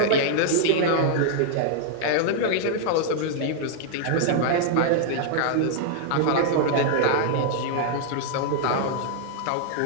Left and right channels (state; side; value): different; both; correlation -0.01